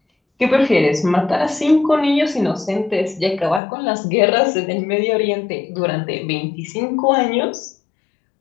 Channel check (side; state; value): right; drops out; at 3.6 s